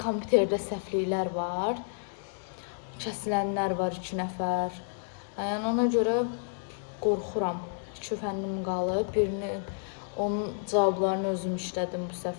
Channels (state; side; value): silent; right; digital silence